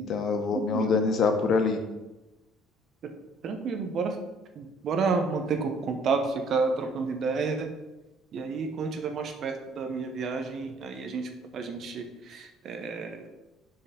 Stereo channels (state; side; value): normal; both; correlation 0.58